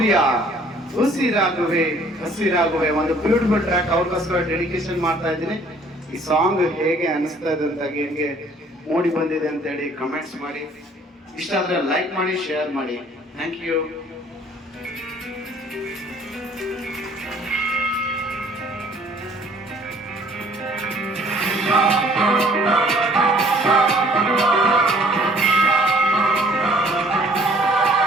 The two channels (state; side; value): normal; both; correlation 0.57